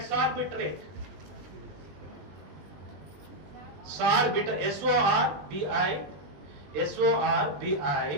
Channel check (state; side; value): late; left; 20 ms